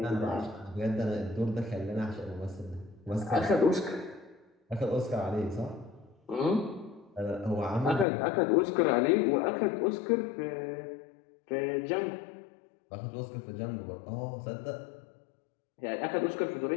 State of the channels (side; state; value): right; drops out; at 8.1 s